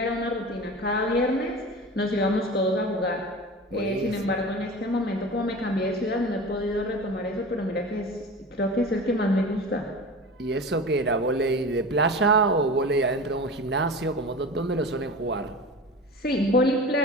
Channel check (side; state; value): both; normal; correlation 0.33